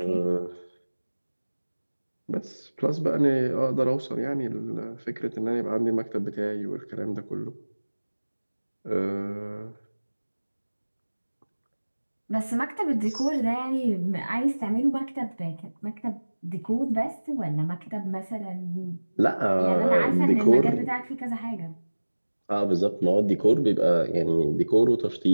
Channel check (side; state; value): both; inverted; correlation -1.00